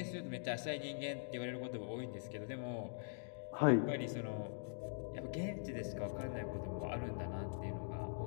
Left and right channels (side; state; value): right; silent; digital silence